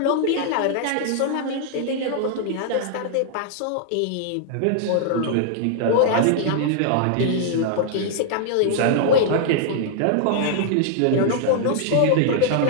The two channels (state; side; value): different; both; correlation -0.01